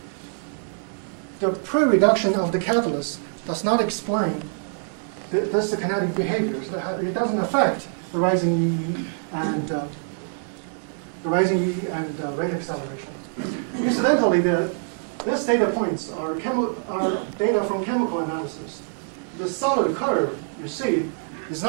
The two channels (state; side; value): silent; left; digital silence